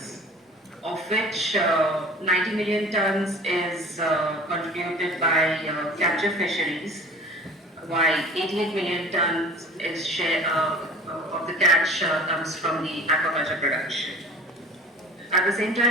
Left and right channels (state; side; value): normal; both; correlation 0.42